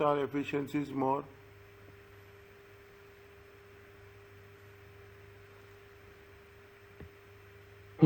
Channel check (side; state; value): both; identical; correlation 1.00